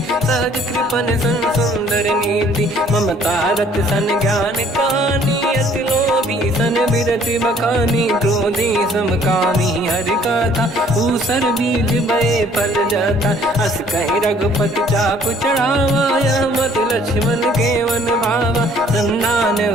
सहज कृपन सन सुंदर नीति। ममता रत सन ज्ञान कहानी, अति लोभी सन बिरति बखानी। क्रोधी समकामी हरि कथा, ऊसर बीज बये फल जाता। अस कहि रघुपति चाप चढ़ावा, यह मत लक्ष्मण के वन भावा। संधान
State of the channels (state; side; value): normal; both; correlation 0.59